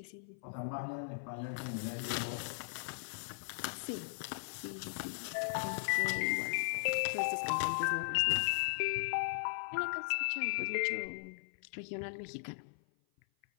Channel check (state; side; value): silent; right; 53 dB below the other